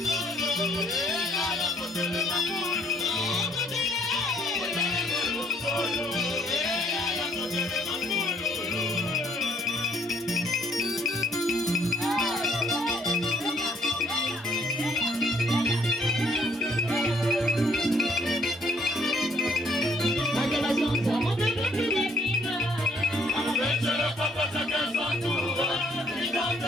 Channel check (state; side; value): normal; both; correlation 0.65